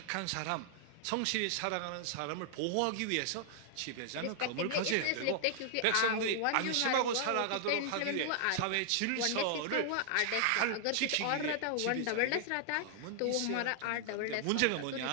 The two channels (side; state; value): both; different; correlation 0.00